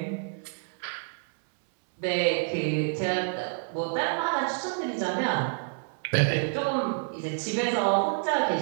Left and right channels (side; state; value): left; silent; digital silence